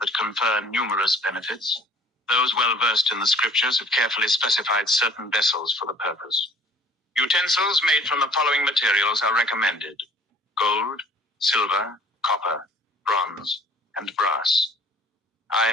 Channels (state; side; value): normal; both; correlation 0.52